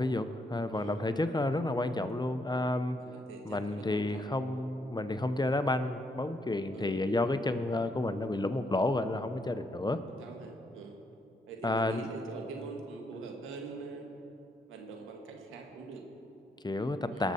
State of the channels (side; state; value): both; normal; correlation 0.75